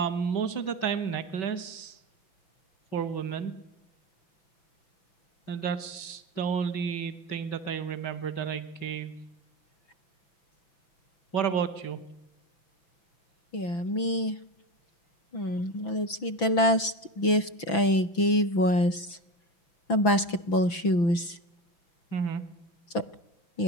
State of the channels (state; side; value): late; right; 6.0 ms